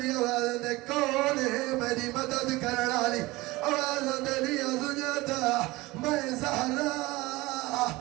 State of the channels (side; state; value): left; quieter; 20.7 dB